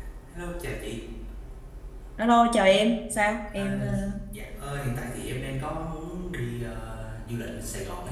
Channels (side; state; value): both; identical; correlation 1.00